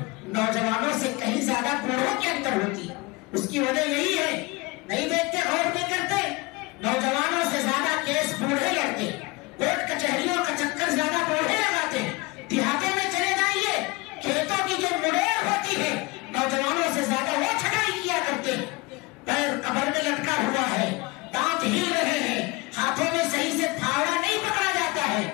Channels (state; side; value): quieter; right; 24.5 dB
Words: نوجوانوں سے کہیں زیادہ بوڑھوں کے اندر ہوتی ہے. اس کی وجہ یہی ہے، نہیں دیکھتے، غور نہیں کرتے. نوجوانوں سے زیادہ کیس بوڑھے لڑتے، کورٹ کچہریوں کا چکر زیادہ بوڑھے لگاتے. دیہاتوں میں چلے جائیے، کھیتوں کی جو مڑیر ہوتی ہے نوجوانوں سے زیادہ وہ چھٹائی کیا کرتے ہیں. پیر قبر میں لٹکا ہوا ہے، دانت ہل رہے ہیں، ہاتھوں میں صحیح سے پھاوڑا نہیں پکڑا جاتا ہے،